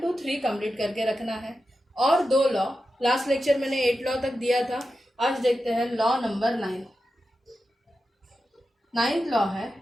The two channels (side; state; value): both; normal; correlation 0.91